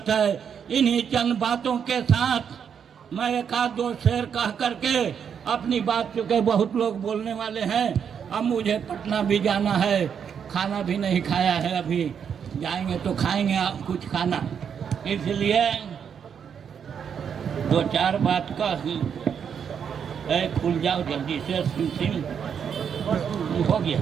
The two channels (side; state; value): left; quieter; 7.5 dB